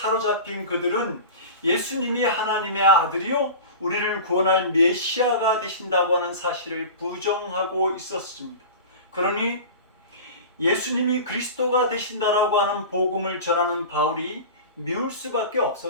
그들은 예수님이 하나님의 아들이요 우리를 구원할 메시아가 되신다고 하는 사실을 부정하고 있었습니다. 그러니 예수님이 그리스도가 되신다라고 하는 복음을 전하는 바울이 미울 수밖에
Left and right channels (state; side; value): inverted; both; correlation -0.33